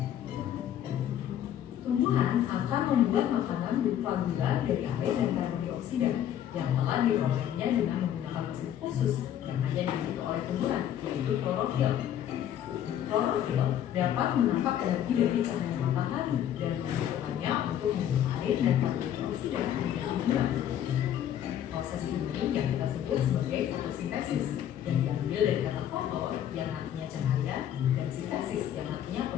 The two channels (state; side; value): quieter; right; 10.6 dB